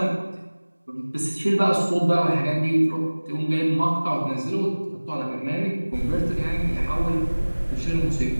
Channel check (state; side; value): inverted; both; correlation -1.00